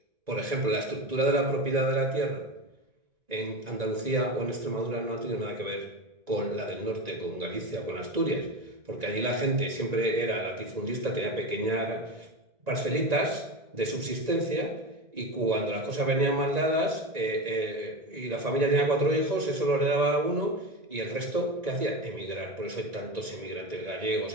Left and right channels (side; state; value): left; late; 1.9 ms